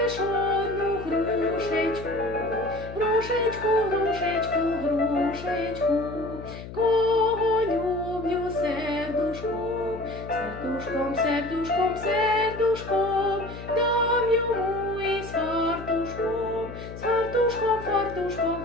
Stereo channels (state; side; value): noise; left; hum, 12 dB below the sound